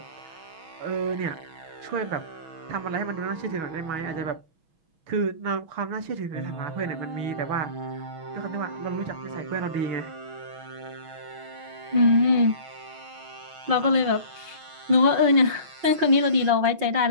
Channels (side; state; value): left; late; 6.2 ms